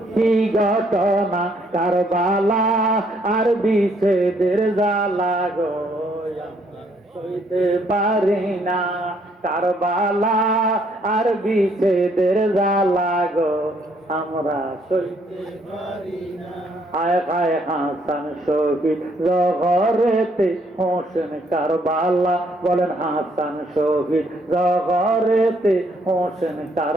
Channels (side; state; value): both; normal; correlation 0.68